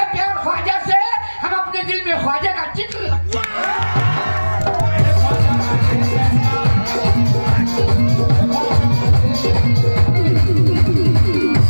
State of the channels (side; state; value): both; inverted; correlation -1.00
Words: प्यार ख्वाजा से, हम अपने दिल में ख्वाजा का चित्र रखते हैं।